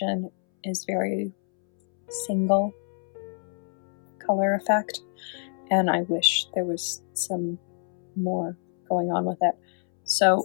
is very single color effect, and I wish there was some more going on with it.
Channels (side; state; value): right; silent; 60 dB below the other